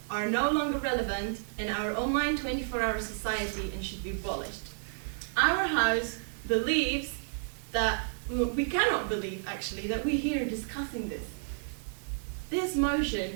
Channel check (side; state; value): left; silent; digital silence